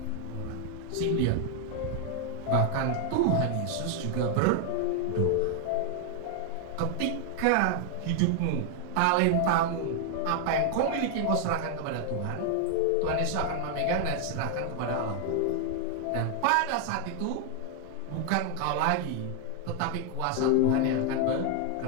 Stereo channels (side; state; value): both; different; correlation 0.00